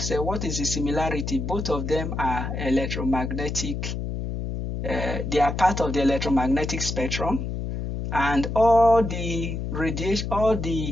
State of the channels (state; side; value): noise; left; hum, 4 dB below the sound